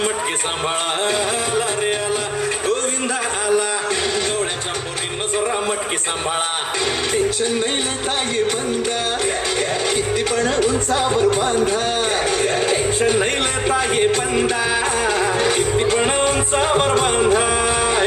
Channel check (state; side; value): identical; both; correlation 1.00